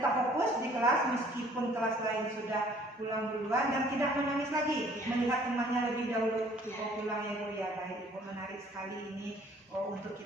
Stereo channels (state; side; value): normal; both; correlation 0.56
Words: fokus di kelas meskipun kelas lain sudah pulang duluan dan tidak menangis lagi melihat temannya lebih dahulu pulang ya Bu ya. Baik Ibu, menarik sekali ini untuk